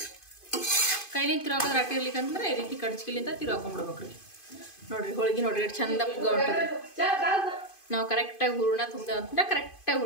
ಕೈಲಿಂದ ತಿರು ಹಾಕೋದ್ರೆ ಅಟ್ಟಿ ಇರ್ಲಿಕ್ಕಂದ್ರೆ ಈ ರೀತಿ ಕಡ್ಚಿಲಿಂದ ತಿರು ಹಾಕೊಂಡ್ಬಿಡ್ಬೇಕ್ರಿ. ನೋಡ್ರಿ ಹೋಳಿಗೆ ನೋಡ್ರಿ ಎಷ್ಟು ಚಂದ ಪುಗ್ಗ ಹೊಂಟದ್ರಿ. ನಾವು ಕರೆಕ್ಟಾಗಿ ಹೂರ್ಣ ತುಂಬ್ದೇವೆ ಅಂತಂದ್ರೆ ಕರೆಕ್ಟಾಗಿ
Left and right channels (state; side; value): late; right; 2.5 ms